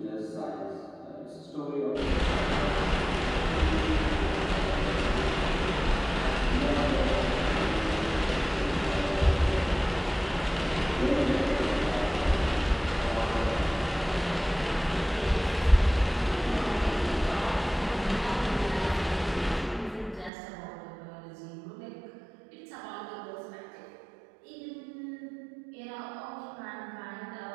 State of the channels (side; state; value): left; drops out; at 20.3 s